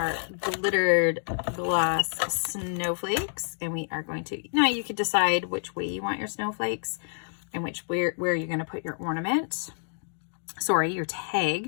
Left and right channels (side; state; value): right; silent; digital silence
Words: glittered glass snowflakes, and we are going to, now you could decide which way you want your snowflakes and where you're going to put your ornament. Sorry, your